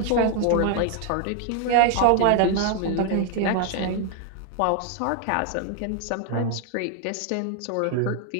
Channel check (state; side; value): different; both; correlation 0.00